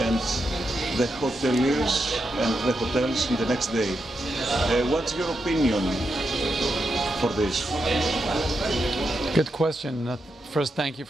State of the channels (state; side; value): normal; both; correlation 0.85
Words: the hoteliers and the hotels in the next day. What's your opinion for this? Good question. First, thank you